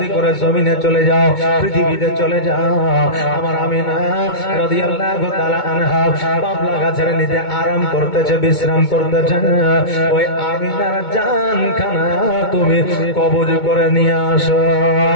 করে জমিনে চলে যাও, পৃথিবীতে চলে যাও। আমার আমিনা রাদিয়াল্লাহু তাআলা আনহা বাবলা গাছের নিচে আরাম করতেছে, বিশ্রাম করতেছে। ওই আমিনার জানখানা তুমি কবজ করে নিয়ে আসো,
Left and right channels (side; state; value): right; late; 2.2 ms